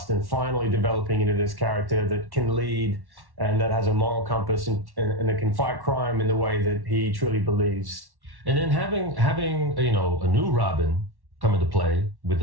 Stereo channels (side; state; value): left; late; 1.1 ms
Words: and finally developing into this character that can lead and that has a moral compass and that can fight crime in the way that he truly believes. And then having you know, a new Robin come into play with